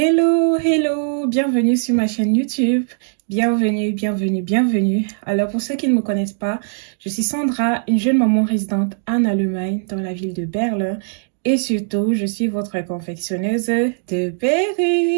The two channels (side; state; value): left; silent; digital silence